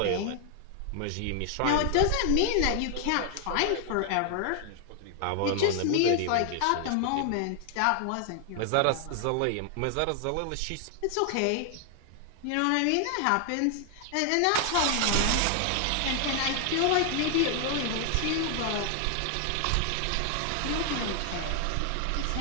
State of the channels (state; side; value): different; both; correlation 0.00